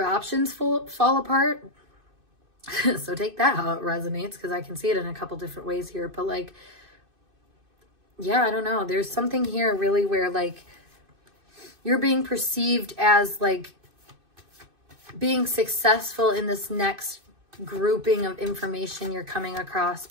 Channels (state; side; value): late; left; 2.6 ms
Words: options fall apart. So take that how it resonates, because I can see it in a couple different ways here. But like, yeah, I don't know. There's something here really where like you're being perceived as like being successful in this next grouping of information you're coming across,